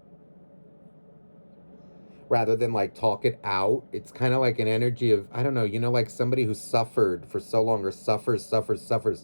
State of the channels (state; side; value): inverted; both; correlation -1.00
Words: rather than like talk it out. It's kind of like an energy of, I don't know, like somebody who suffered for so long, or suffers.